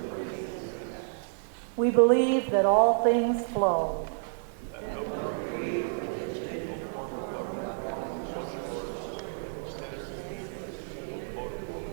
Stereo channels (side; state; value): left; silent; digital silence